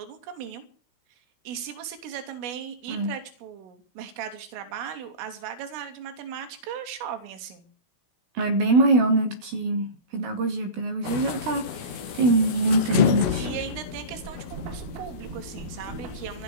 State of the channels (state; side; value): late; left; 16 ms